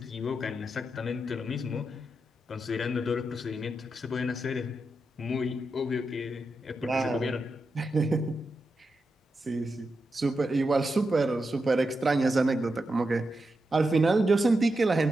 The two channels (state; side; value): normal; both; correlation 0.87